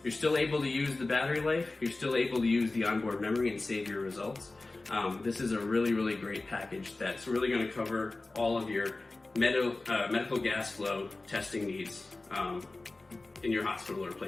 You're still able to use the battery life, you're still able to use the onboard memory and save your results. This is a really, really great package that's really going to cover all of your medical gas flow testing needs in your hospital or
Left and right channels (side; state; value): right; quieter; 3.2 dB